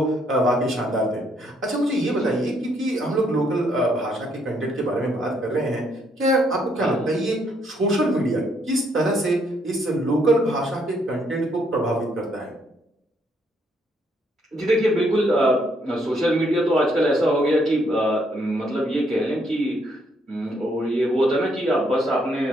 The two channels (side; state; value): both; normal; correlation 0.71